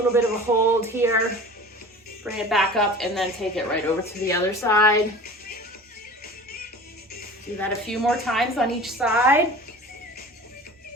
bit of a hold here, bring it back up, and then take it right over to the other side. Do that a few more times on each side.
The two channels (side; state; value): both; normal; correlation 0.39